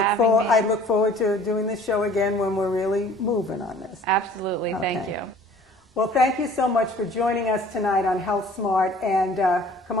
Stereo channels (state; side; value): normal; both; correlation 0.51